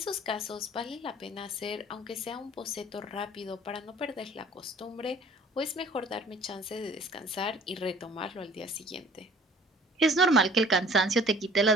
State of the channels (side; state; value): both; normal; correlation 0.51